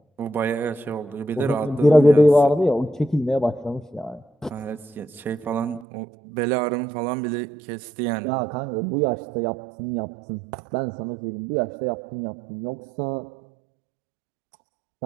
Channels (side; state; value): left; drops out; at 5.9 s